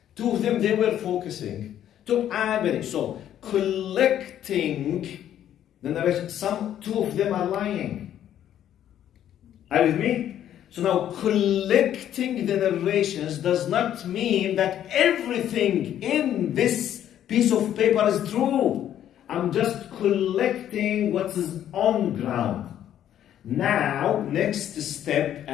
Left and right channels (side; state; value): right; quieter; 10.9 dB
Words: 2 of them, they were focusing. So, collecting the narration, 2 of them are lying. Are you with me? So now, collecting the narrations does not mean that everything in this piece of paper is true. I'm just collecting what is on ground. Now, next step,